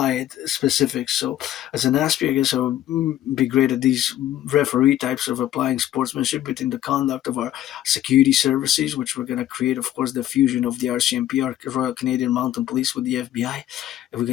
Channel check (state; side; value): quieter; right; 12.7 dB